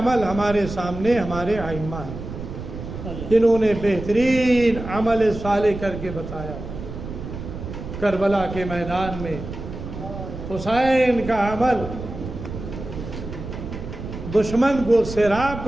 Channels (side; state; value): right; noise; rumble, 9 dB below the sound